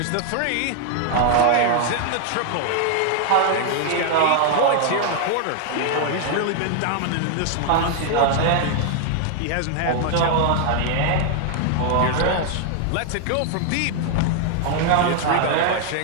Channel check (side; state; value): both; different; correlation 0.00